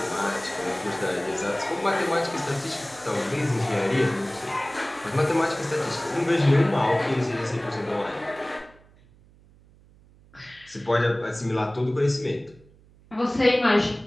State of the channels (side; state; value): right; noise; hum, 27 dB below the sound